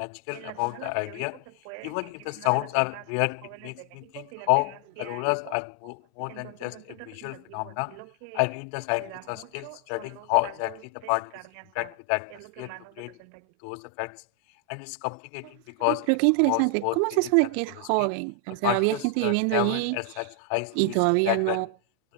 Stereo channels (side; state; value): both; different; correlation 0.00